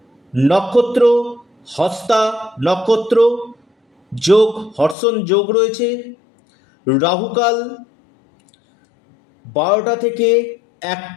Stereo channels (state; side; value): drops out; right; at 5.0 s